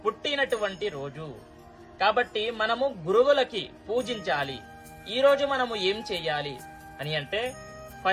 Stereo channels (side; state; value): both; identical; correlation 1.00